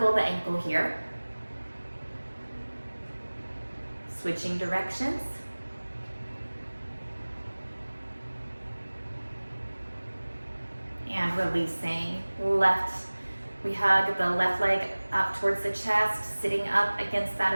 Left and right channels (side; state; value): both; inverted; correlation -1.00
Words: the ankle here. Switching directions. And releasing. Left, we hug the left leg up towards the chest, sitting up against that